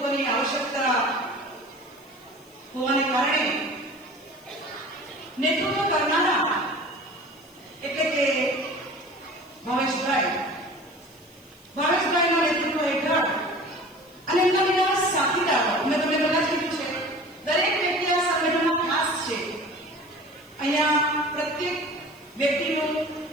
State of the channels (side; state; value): left; noise; hiss, 28 dB below the sound